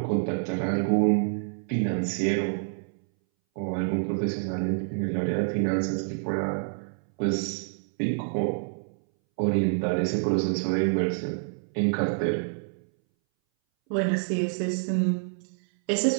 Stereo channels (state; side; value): silent; left; 60 dB below the other